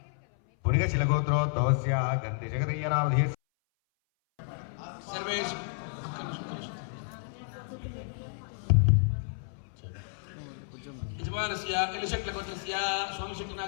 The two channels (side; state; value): right; silent; 57 dB below the other